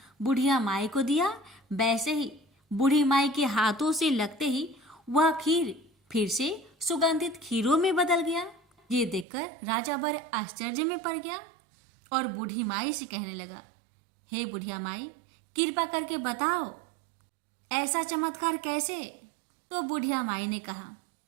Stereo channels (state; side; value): drops out; left; at 9.2 s